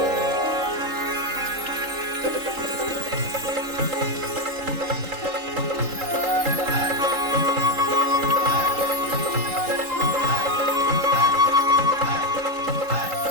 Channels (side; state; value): left; late; 3.8 ms